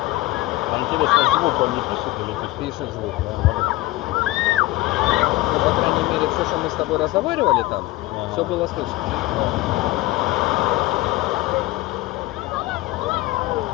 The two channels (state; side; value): quieter; right; 18.9 dB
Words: Интересно, звук он не пишет или пишет? Пишет звук. Да, Ну, по крайней мере, все, что мы с тобой разговаривали там, Ага. все было слышно.